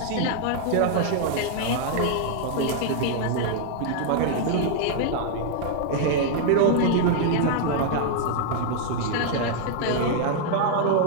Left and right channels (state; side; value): different; both; correlation 0.00